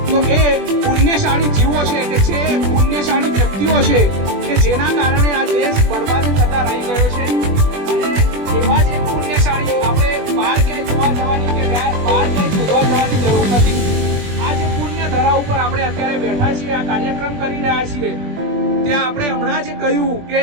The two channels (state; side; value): late; left; 21 ms